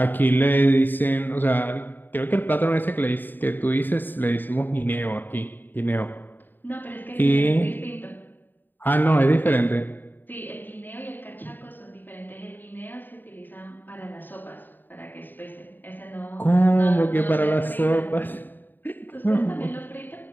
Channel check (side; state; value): right; late; 0.091 ms